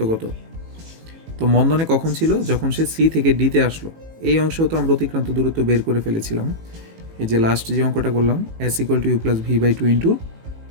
কত? তো মন্দনে কখন ছিল? যখন সে সি থেকে ডিতে আসলো। এই অংশেও তো আমরা অতিক্রান্ত দূরত্ব বের করে ফেলেছিলাম, এই যে লাস্ট যে অঙ্কটা করলাম S = U + V/2 ×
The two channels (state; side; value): late; left; 18 ms